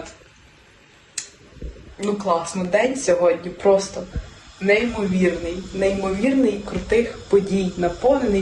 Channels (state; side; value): identical; both; correlation 1.00